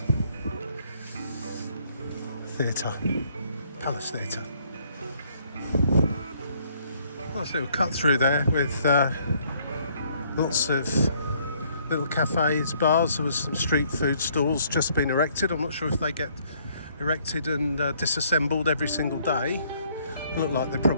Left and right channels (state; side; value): inverted; both; correlation -0.65